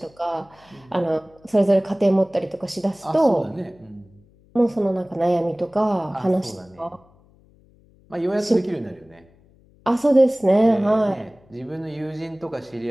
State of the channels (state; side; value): noise; left; hum, 30 dB below the sound